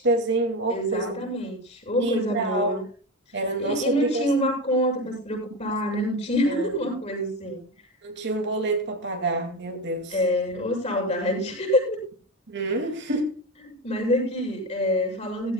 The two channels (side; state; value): both; normal; correlation 0.19